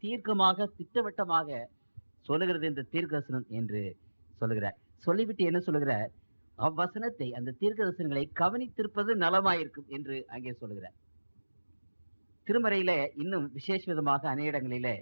தீர்க்கமாக திட்டவட்டமாக சொல்லுகிறது இந்த தீர்க்கதரிசனம் என்று சொல்லுகிறார். சொல்லிவிட்டு என்ன சொல்லுகிறார்? அவ்வசனத்தை, அந்த தீர்க்கதரிசனங்களை கவனித்திருப்பது நலமாயிருக்கும் என்று அங்கே சொல்லுகிறார். திருமறையில இன்னும் விசேஷ விதமாக அநேக இடங்களிலே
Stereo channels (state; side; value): inverted; both; correlation -1.00